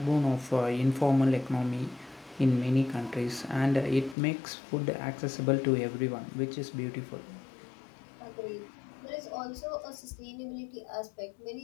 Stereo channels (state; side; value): drops out; right; at 4.2 s